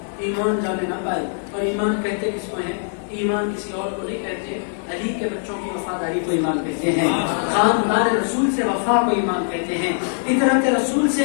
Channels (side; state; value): right; silent; digital silence